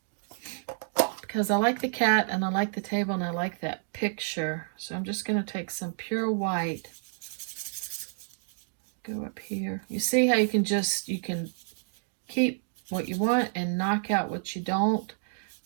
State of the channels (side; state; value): left; silent; digital silence